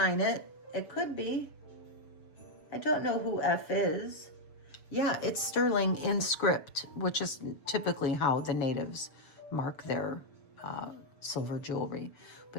it. It could be. I don't know who F is. Yeah, it's sterling in script, which is typically how the natives mark their silver jewelry.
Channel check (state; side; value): late; right; 7.0 ms